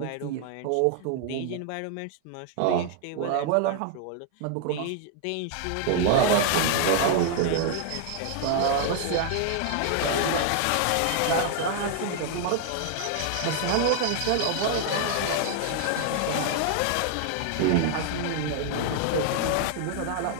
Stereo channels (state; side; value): different; both; correlation -0.01